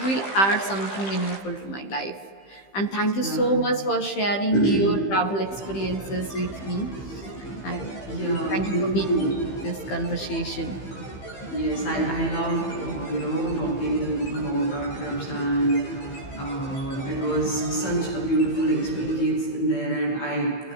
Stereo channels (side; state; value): right; late; 15 ms